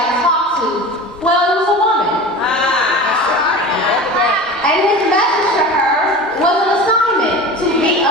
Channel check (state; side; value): normal; both; correlation 0.34